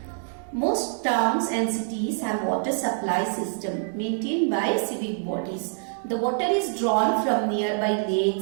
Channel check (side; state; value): left; silent; digital silence